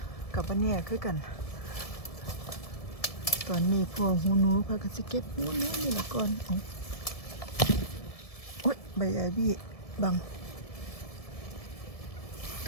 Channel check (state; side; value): late; right; 1.7 ms